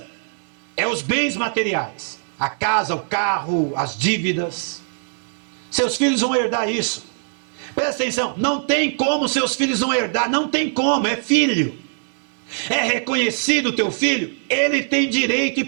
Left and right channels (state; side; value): silent; left; 65 dB below the other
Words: é os bens materiais, a casa, o carro, as dívidas. Seus filhos vão herdar isso. Presta atenção, não tem como seus filhos não herdar, não tem como, é filho. É reconhecido o teu filho, ele tem direito e